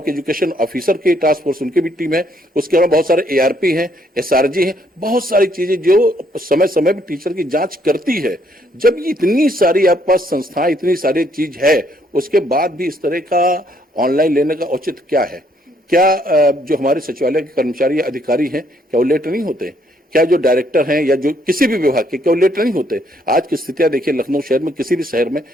एजुकेशन ऑफिसर की टास्क फोर्स उनकी भी टीम है, उसके अलावा बहुत सारे एआरपी हैं, एसआरजी हैं, बहुत सारी चीजें जो समय समय पर टीचर की जांच करती है। जब इतनी सारी आपके पास संस्थाएं, इतनी सारी चीज है, उसके बाद भी इस तरह का ऑनलाइन लेने का औचित्य क्या है। क्या जो हमारे सचिवालय के कर्मचारी या अधिकारी हैं, क्या वो लेट नहीं होते? क्या जो डायरेक्टर हैं या जो किसी भी विभाग के, क्या वो लेट नहीं होते? आज की स्थितियां देखिए, लखनऊ शहर में, किसी भी शहर में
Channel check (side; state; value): both; normal; correlation 0.69